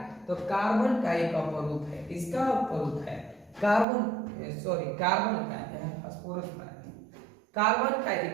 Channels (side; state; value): left; drops out; at 3.9 s